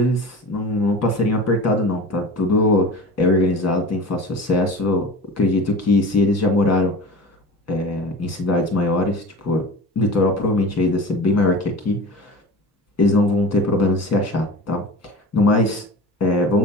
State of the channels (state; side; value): normal; both; correlation 0.34